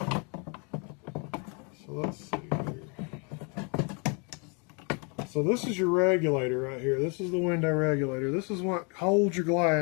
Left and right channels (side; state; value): right; quieter; 34.1 dB